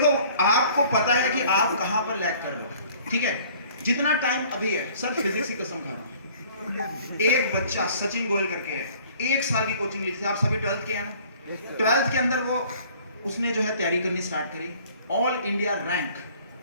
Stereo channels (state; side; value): inverted; both; correlation -0.54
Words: आपको पता है कि आप कहाँ पर लैग कर रहे हो, ठीक है। जितना टाइम अभी है सर, फिजिक्स की कसम खा रहा हूँ, एक बच्चा सचिन गोयल करके है, 1 साल की कोचिंग ली थी। आप सभी 12th के हैं ना? 12th के अंदर वो उसने जो है तैयारी करनी स्टार्ट करी, ऑल इंडिया रैंक